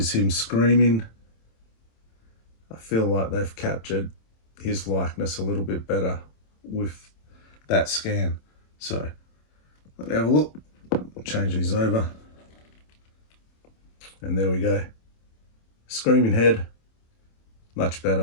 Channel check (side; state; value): right; late; 27 ms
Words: him screaming. I feel like they've captured his likeness a little bit better with that scan. So let me have a look. Change these over. And there we go. Screaming head, much